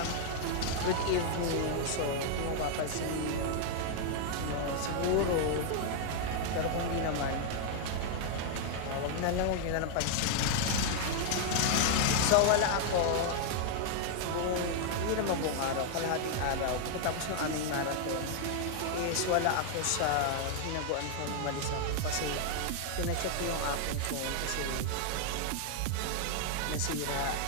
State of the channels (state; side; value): different; both; correlation 0.00